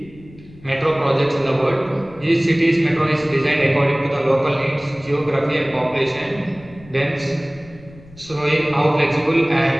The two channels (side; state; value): left; noise; rumble, 21 dB below the sound